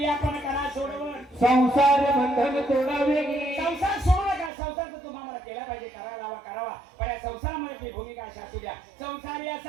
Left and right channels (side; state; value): left; drops out; at 4.5 s